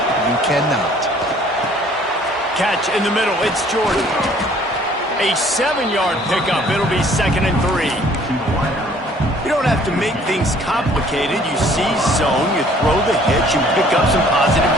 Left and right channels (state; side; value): normal; both; correlation 0.57